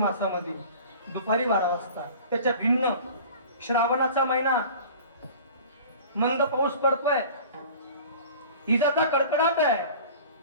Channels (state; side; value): inverted; both; correlation -0.42